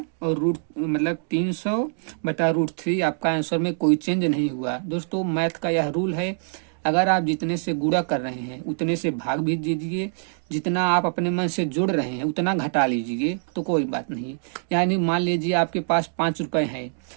और रूट मतलब 300 बटा √3 आपका आंसर में कोई चेंज नहीं हुआ। दोस्तों मैथ का यह रूल है, अगर आप जितने से गुणा कर रहे हैं उतने से भाग भी दीजिए, जितना आप अपने मन से जोड़ रहे हैं उतना घटा लीजिए, तो कोई बात नहीं। यानी मान लीजिए आपके पास 5 रुपए हैं,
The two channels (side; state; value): left; silent; digital silence